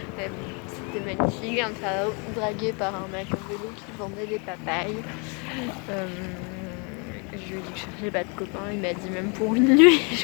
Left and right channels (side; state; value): right; quieter; 34.2 dB